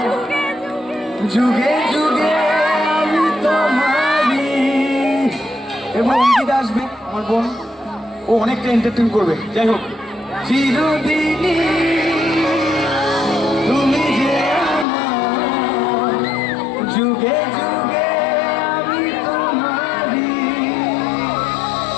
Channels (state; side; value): drops out; right; at 14.9 s